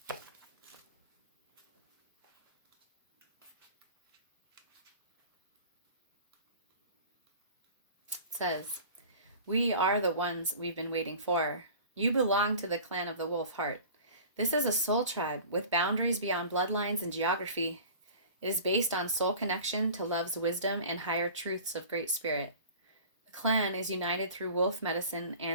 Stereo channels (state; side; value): inverted; both; correlation -0.41